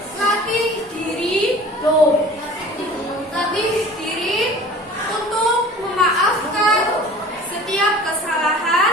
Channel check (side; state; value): both; normal; correlation 0.43